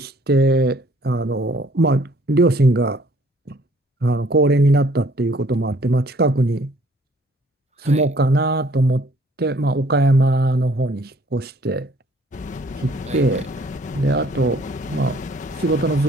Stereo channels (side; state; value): both; normal; correlation 0.59